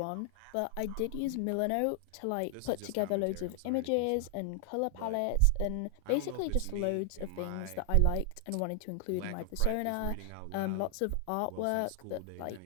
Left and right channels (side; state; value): both; different; correlation 0.00